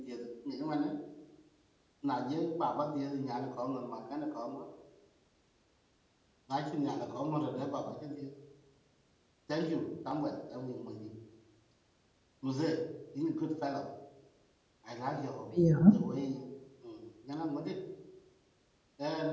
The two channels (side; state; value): both; identical; correlation 1.00